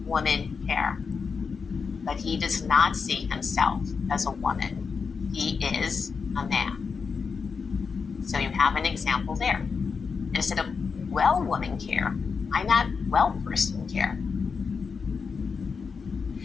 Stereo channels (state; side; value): quieter; right; 5.4 dB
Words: woman care, but he does not see himself as a woman. He is a man. So you have an example there. Instead of well woman care, I'm not well person care.